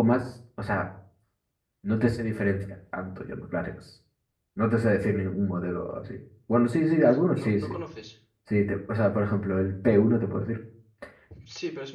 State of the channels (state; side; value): identical; both; correlation 1.00